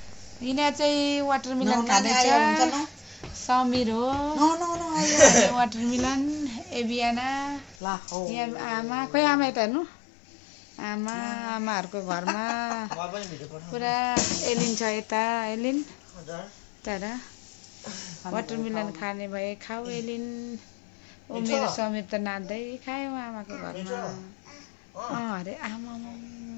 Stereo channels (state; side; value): drops out; right; at 7.8 s